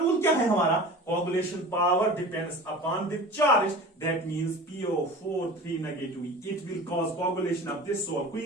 क्या है हमारा, coagulation power depends upon the charge, that means PO4 negative, it will cause coagulation of this sol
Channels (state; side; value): normal; both; correlation 0.37